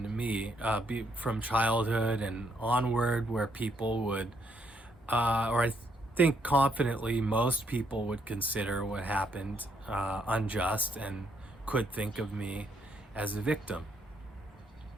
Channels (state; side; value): normal; both; correlation 0.73